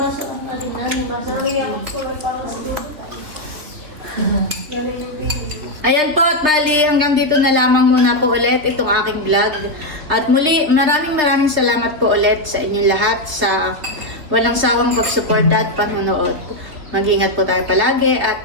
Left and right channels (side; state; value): left; late; 3.3 ms